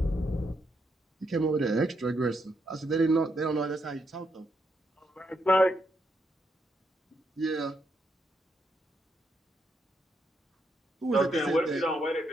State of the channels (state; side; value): normal; both; correlation 0.79